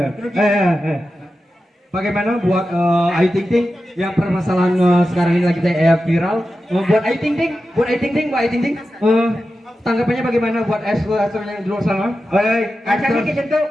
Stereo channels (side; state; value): both; normal; correlation 0.92